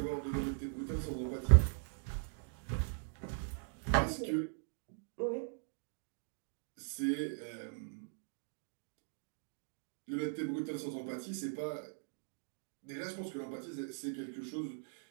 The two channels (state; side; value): silent; left; digital silence